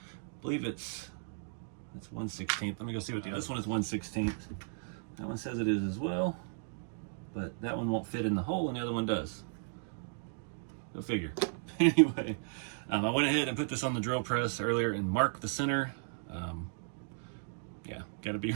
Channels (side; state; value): left; silent; digital silence